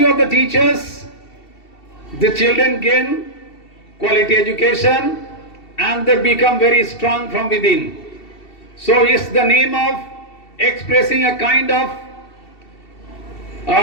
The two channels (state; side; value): late; right; 2.7 ms